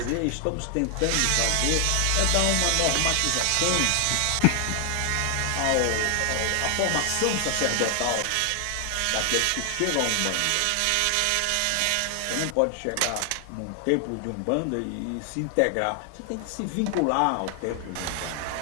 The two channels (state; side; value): different; both; correlation 0.00